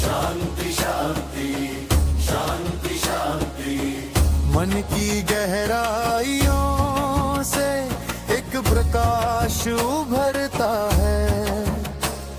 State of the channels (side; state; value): both; identical; correlation 1.00